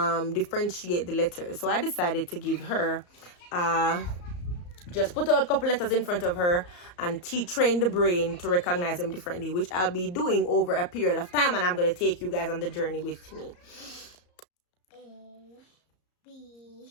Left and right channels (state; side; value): late; right; 34 ms